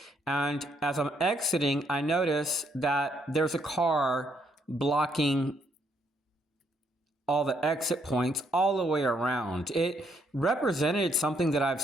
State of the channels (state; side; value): normal; both; correlation 0.72